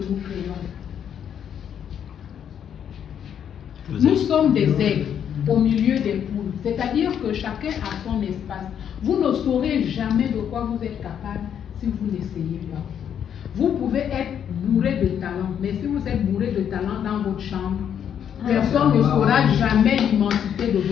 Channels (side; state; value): right; quieter; 8.8 dB